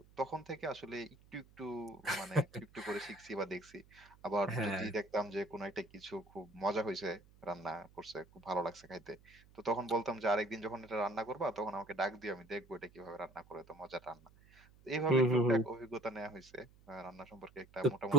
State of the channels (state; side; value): noise; right; hum, 26 dB below the sound